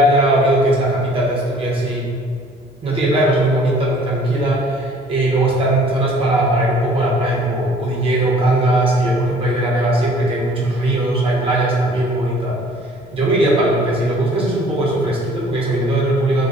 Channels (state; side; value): normal; both; correlation 0.53